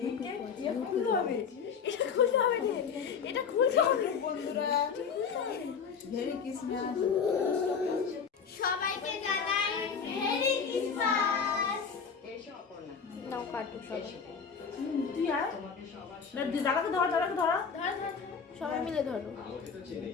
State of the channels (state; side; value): quieter; right; 6.2 dB